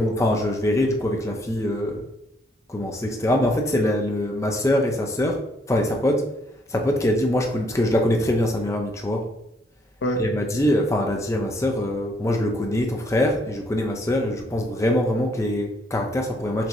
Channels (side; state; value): both; normal; correlation 0.69